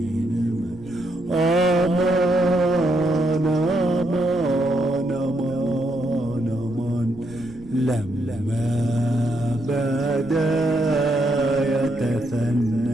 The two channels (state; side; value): noise; right; rumble, 19 dB below the sound